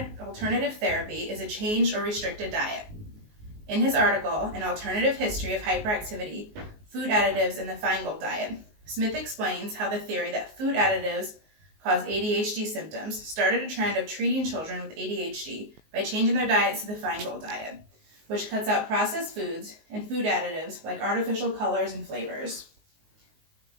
therapy is a changed or restricted diet. In his article, An Alternative History of Hyperactivity, Food Additives in the Feingold Diet, Smith explains how the theory that food additives cause ADHD symptoms started a trend of treating children with ADHD by changing their diets to the Feingold diet, which cuts out processed foods and food additives like artificial colors and flavors.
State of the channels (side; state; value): left; late; 19 ms